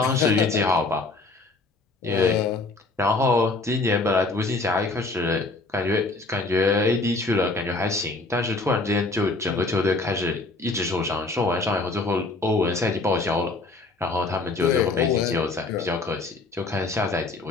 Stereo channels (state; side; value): quieter; right; 3.4 dB